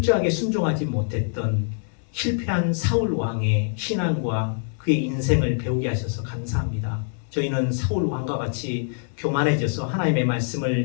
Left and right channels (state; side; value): silent; right; digital silence